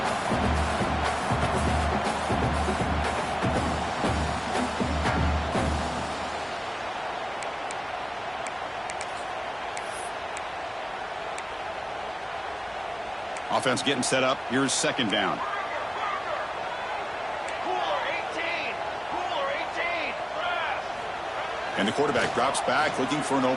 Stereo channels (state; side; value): identical; both; correlation 1.00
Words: Offense getting set up. Here's second down. And the quarterback drops back looking for an